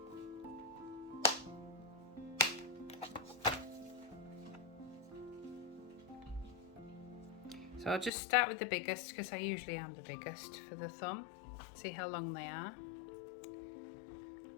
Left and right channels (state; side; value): drops out; right; at 8.1 s